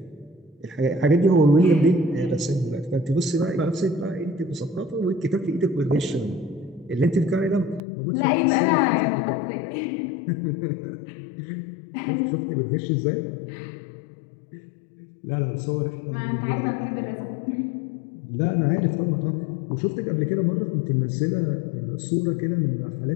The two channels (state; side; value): drops out; right; at 7.8 s